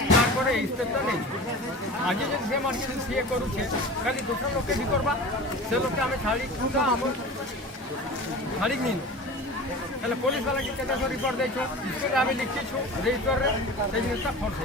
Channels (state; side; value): normal; both; correlation 0.35